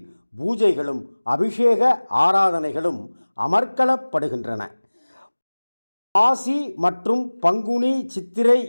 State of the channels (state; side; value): inverted; both; correlation -1.00